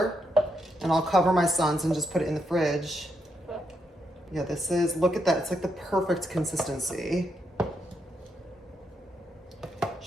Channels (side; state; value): both; normal; correlation 0.80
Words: and I'll cover my son's and just put it in the fridge. Yeah, this is, look at that. It's like the perfect consistency.